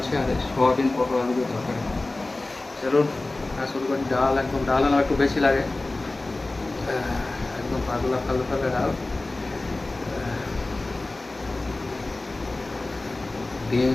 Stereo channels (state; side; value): quieter; right; 3.0 dB